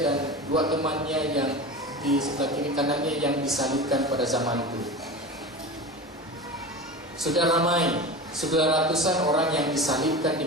dan dua temannya yang di sebelah kiri kanannya yang disalibkan pada zaman itu. Sudah ramai, sudah ratusan orang yang disalibkan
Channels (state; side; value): normal; both; correlation 0.29